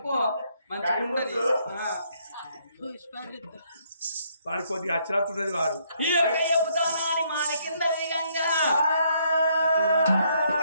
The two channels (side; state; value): both; inverted; correlation -0.70